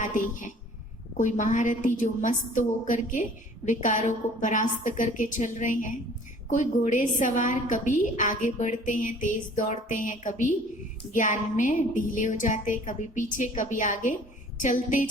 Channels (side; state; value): both; normal; correlation 0.51